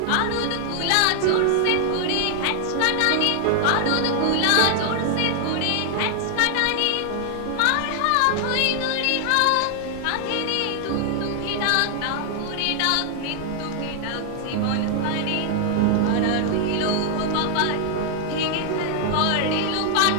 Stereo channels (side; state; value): both; different; correlation 0.00